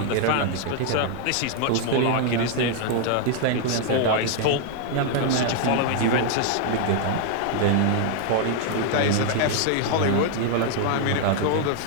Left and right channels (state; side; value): different; both; correlation 0.00